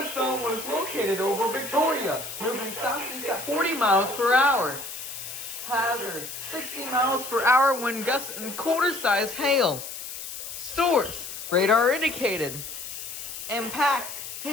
was located over Victoria, moving southeast at 40 miles per hour. Hazard, 60 miles per hour wind gusts and quarter-sized hail. Source, radar indicated. Impact,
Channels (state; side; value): noise; left; hiss, 9 dB below the sound